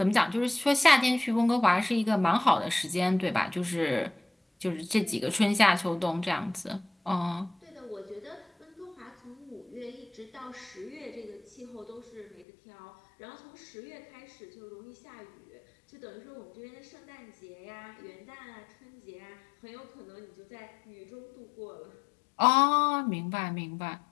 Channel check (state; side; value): drops out; right; at 12.5 s